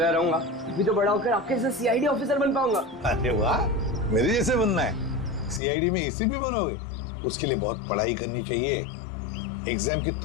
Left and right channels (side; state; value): right; drops out; at 5.6 s